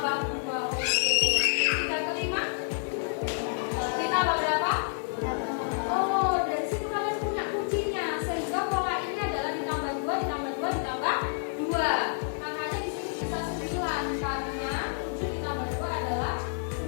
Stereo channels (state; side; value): silent; right; digital silence